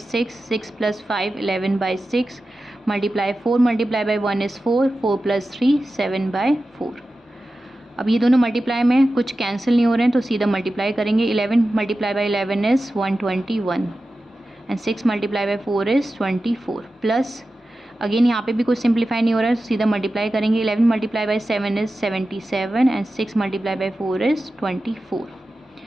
6, 6 plus 5 11/6 multiply 4 multiply by 1 is 4, 4 plus 3 7/4। अब ये दोनों मल्टीप्लाई में कुछ कैंसिल नहीं हो रहे हैं तो सीधा मल्टीप्लाई करेंगे। 11 multiply by 11 is 121 and 6 multiply by 4 is 24 plus again यहाँ पे भी कुछ सिंप्लीफाई नहीं हो रहा है, सीधा मल्टीप्लाई करेंगे। 11 multiply by 7 is 77 and 6 multiply by 4 is 24।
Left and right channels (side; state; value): both; normal; correlation 0.93